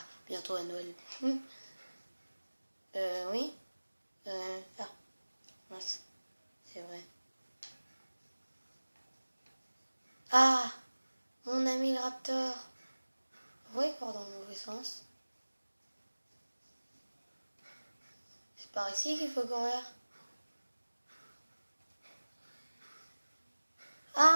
bientôt à Noël. Oui. Ah, mince. C'est vrai. Ah, mon ami le raptor. Vous voyez quoi dans le mauvais sens? C'est par ici qu'il faut courir.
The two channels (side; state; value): both; inverted; correlation -1.00